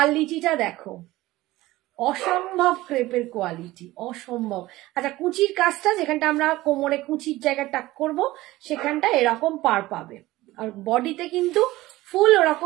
দেখো, অসম্ভব ক্রেপের কোয়ালিটি, অসম্ভব। আচ্ছা, কুচির কাজটা যেখানটা আমরা কোমরে কুচির জায়গা টাক করব, সেখানটা এরকম পার পাবে, আর বডিতে কিন্তু ফুল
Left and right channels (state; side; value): quieter; left; 17.8 dB